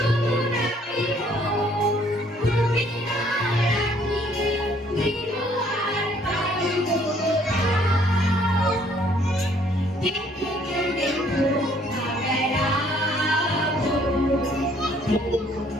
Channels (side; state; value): both; normal; correlation 0.62